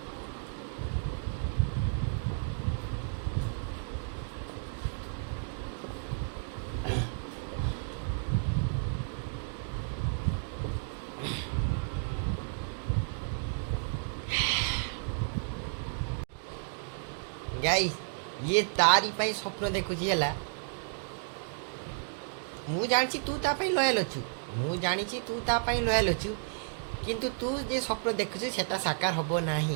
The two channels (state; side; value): silent; left; digital silence